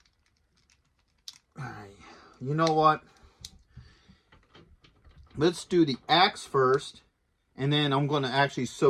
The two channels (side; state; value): both; identical; correlation 1.00